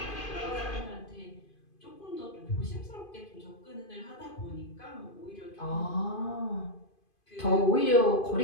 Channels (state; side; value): late; right; 2.5 ms